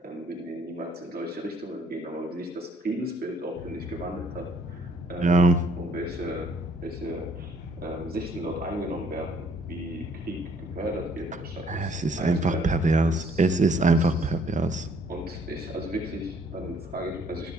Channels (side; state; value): both; normal; correlation 0.62